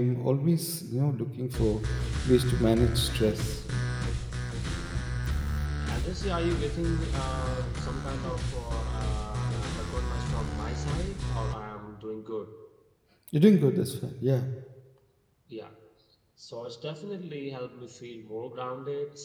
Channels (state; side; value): identical; both; correlation 1.00